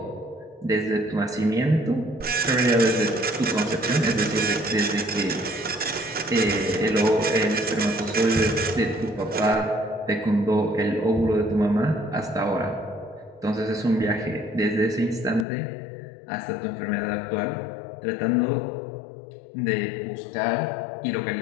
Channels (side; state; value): right; drops out; at 15.5 s